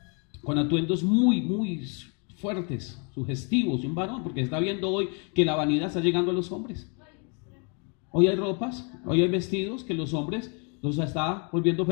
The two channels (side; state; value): right; quieter; 36.7 dB